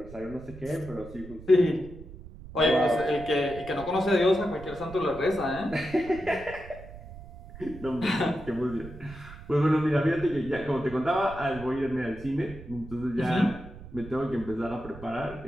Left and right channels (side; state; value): right; noise; rumble, 15 dB below the sound